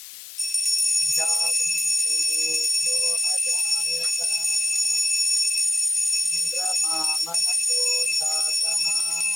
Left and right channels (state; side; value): noise; left; hiss, 15 dB below the sound